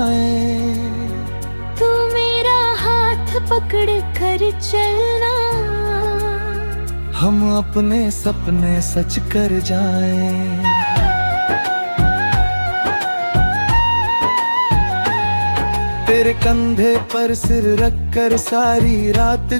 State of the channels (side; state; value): both; inverted; correlation -1.00